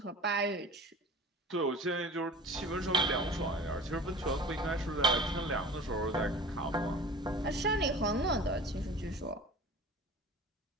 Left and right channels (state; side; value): normal; both; correlation 0.39